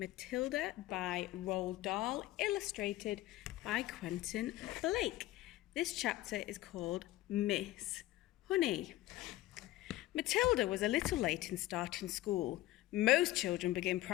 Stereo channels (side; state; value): right; quieter; 16.5 dB